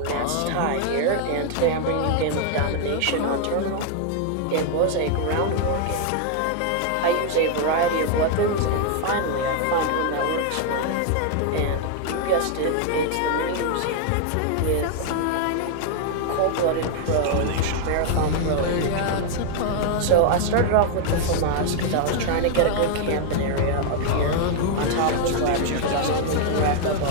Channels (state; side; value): different; both; correlation 0.00